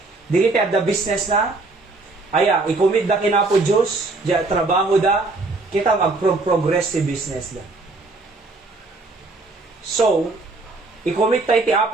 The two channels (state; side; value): quieter; left; 3.3 dB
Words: Di kita ada business na aya i-commit da kinapo Dios, ja trabaho da kita mag-progress si business da. So, i-commit tayo ti